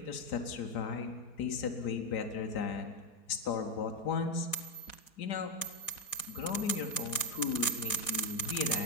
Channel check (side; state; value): right; late; 4.1 ms